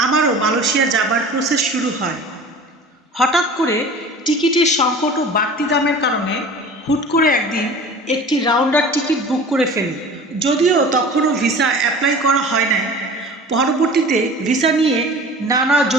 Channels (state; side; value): normal; both; correlation 0.40